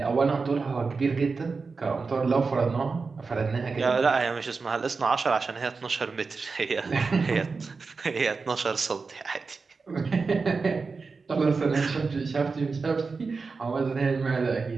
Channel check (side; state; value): left; quieter; 4.5 dB